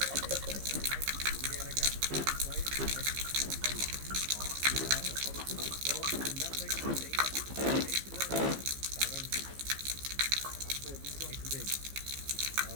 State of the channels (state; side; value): late; left; 15 ms